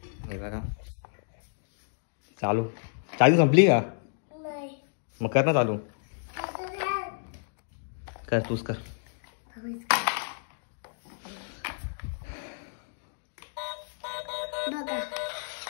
हे बघा चालू, चालू संपली का? मग कर ना चालू, कर तूच कर।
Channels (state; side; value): silent; right; digital silence